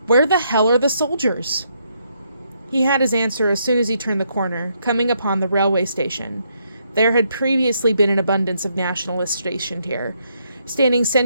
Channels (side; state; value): both; inverted; correlation -0.75